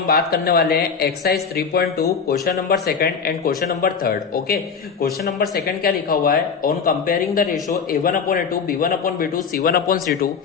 बात करने वाले हैं exercise 3.2 question number second and question number third. Okay, question number second क्या लिखा हुआ है? On comparing the ratio a1/a2 b1/b2 c1/c2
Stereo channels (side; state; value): right; quieter; 6.0 dB